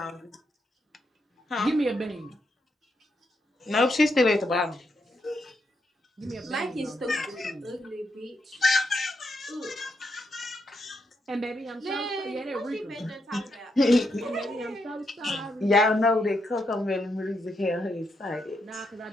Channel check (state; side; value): normal; both; correlation 0.81